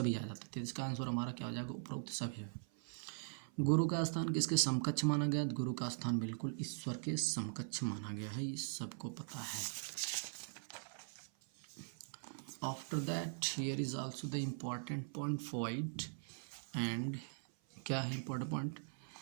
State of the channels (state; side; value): silent; left; 50 dB below the other